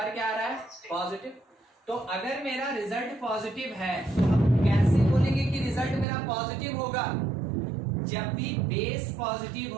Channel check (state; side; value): drops out; left; at 6.1 s